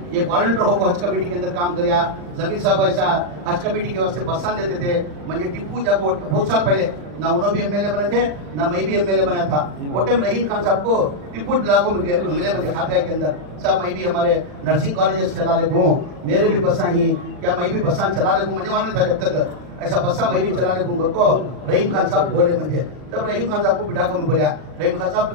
वॉलंटियर होकर हज कमेटी के अंदर काम करिया, जमीर साहब ऐसा हज कमेटी के वास्ते बस्सान देते थे, मुझे टिप्पू जाको बहुत साल पहले ना उन्होंने भी एमएलए बने थे ना मैं भी एमएलए बना था, वो टाइम रहीम खान साहब को टिप्पू लागू मिले मुझे खादरिया के अंदर, साहब मैं भी हमारे नर्सिंग कॉलेजेस चला ले हूँ, मेरे भी बसा ही क्या मैं भी बसा चला ले, मुझे मालूम था जब तक ऐसा बस्सा मैं भी चला ले घर को। रहीम खान साहब बोले मुझे, तब रहीम खान साहब को बिठा को मैं बोला, रहीम खान साहब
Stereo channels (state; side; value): late; left; 40 ms